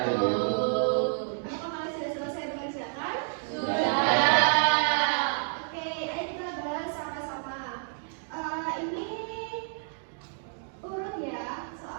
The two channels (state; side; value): silent; left; digital silence